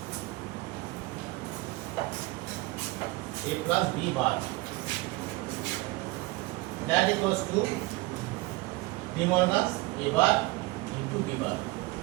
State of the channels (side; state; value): left; quieter; 21.1 dB